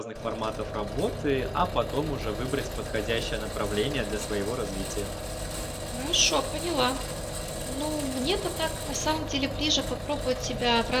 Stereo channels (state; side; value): identical; both; correlation 1.00